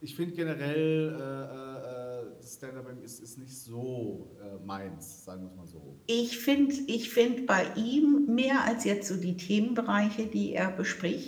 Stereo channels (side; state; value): both; identical; correlation 1.00